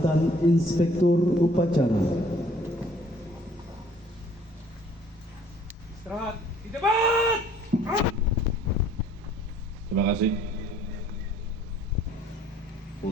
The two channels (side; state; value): both; normal; correlation 0.58